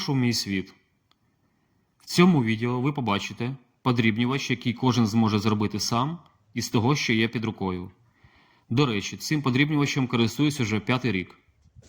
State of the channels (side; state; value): both; identical; correlation 1.00